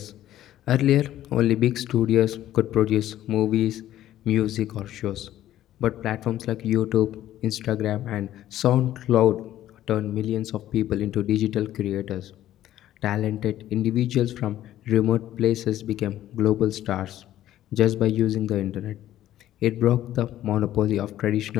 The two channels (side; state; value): right; quieter; 13.0 dB